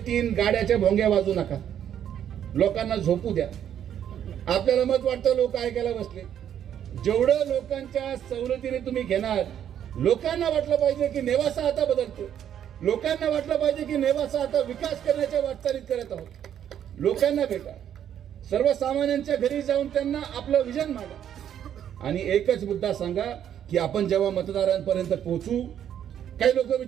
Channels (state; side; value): quieter; left; 9.8 dB